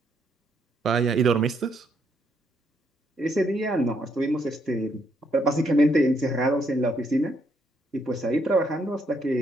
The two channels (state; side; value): normal; both; correlation 0.73